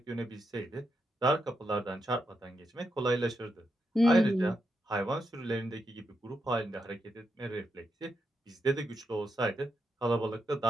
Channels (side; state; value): both; normal; correlation 0.84